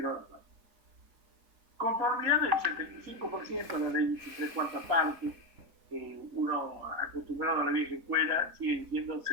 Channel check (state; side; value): late; left; 4.2 ms